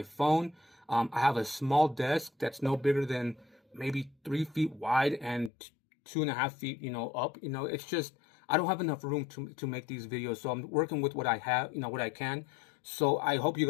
phone. I have a small desk that's no bigger than maybe 3 feet wide and 2.5 feet, you know, up. You know, it's just, I don't have enough room to make these videos. So I'm working with what I have, you know, what I can. So I hope you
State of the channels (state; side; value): drops out; right; at 5.5 s